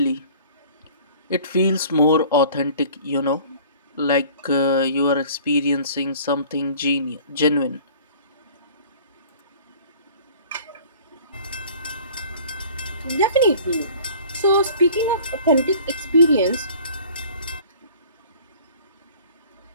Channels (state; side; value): inverted; both; correlation -0.48